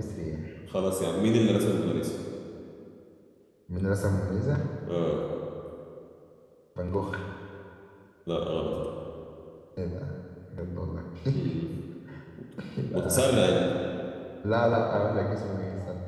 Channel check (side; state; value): both; identical; correlation 1.00